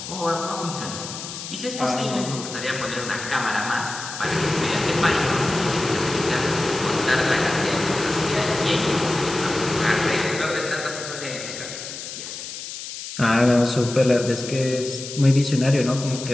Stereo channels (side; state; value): left; noise; hiss, 9 dB below the sound